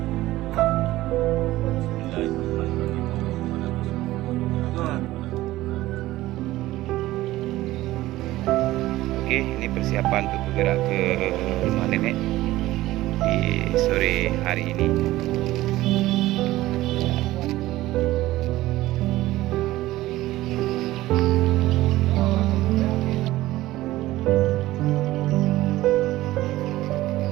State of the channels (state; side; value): quieter; left; 16.6 dB